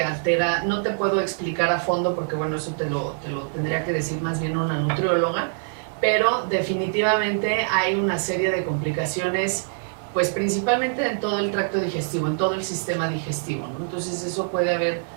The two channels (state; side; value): silent; left; digital silence